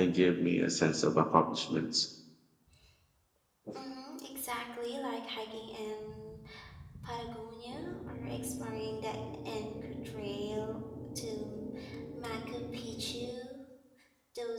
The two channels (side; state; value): both; identical; correlation 1.00